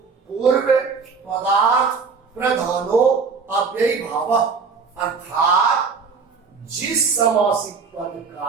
पूर्व पदार्थ प्रधानो अव्ययी भाव। अर्थात जिस समासिक पद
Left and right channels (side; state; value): left; quieter; 5.2 dB